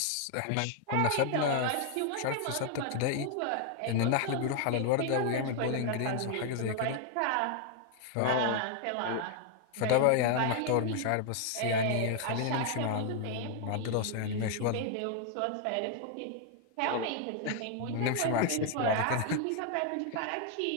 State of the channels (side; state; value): both; different; correlation 0.00